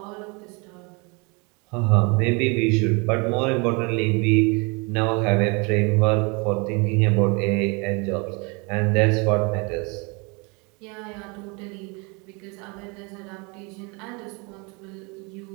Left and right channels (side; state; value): left; quieter; 30.2 dB